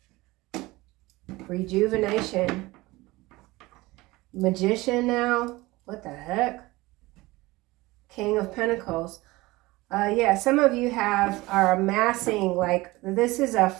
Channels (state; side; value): quieter; left; 20.5 dB